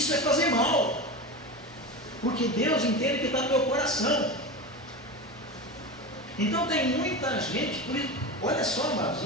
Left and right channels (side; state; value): both; normal; correlation 0.24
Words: é fazer mal, porque Deus entende que está no meu coração. Então tem muita gente, olha só, amados,